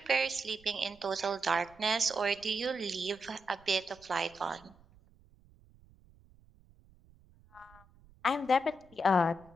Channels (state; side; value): noise; right; rumble, 27 dB below the sound